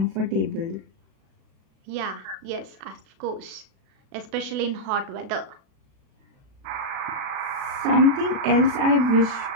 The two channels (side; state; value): left; late; 36 ms